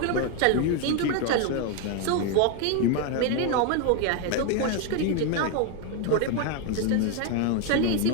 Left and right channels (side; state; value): both; different; correlation 0.01